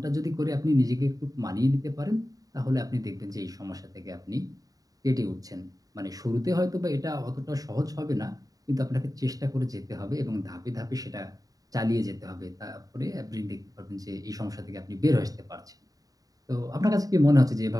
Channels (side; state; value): left; late; 0.18 ms